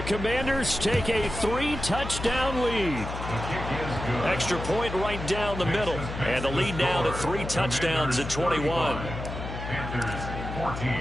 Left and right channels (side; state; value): left; noise; hum, 7 dB below the sound